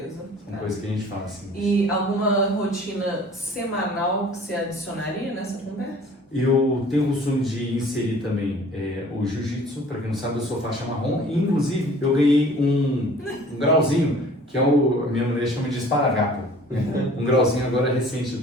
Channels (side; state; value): both; normal; correlation 0.50